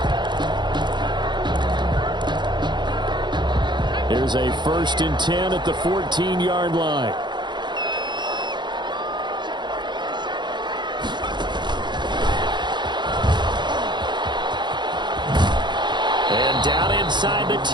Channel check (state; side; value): late; left; 0.22 ms